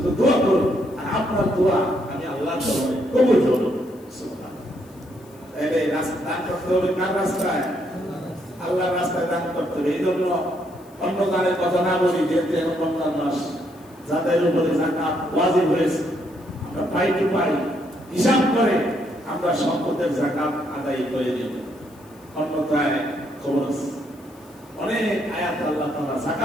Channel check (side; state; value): left; noise; hiss, 28 dB below the sound